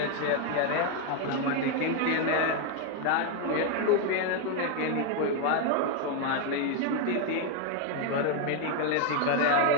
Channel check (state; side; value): different; both; correlation 0.01